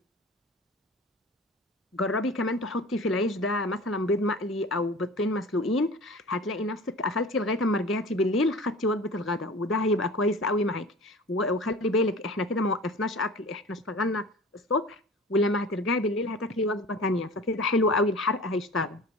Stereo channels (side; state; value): both; normal; correlation 0.40